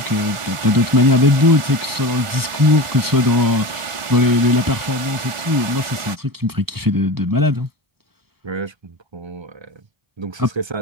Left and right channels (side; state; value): left; late; 1.4 ms